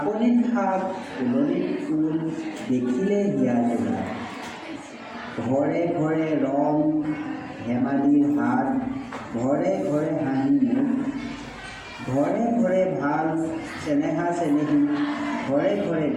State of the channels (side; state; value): both; identical; correlation 1.00